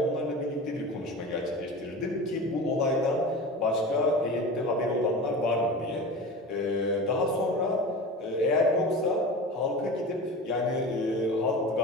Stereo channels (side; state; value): both; normal; correlation 0.32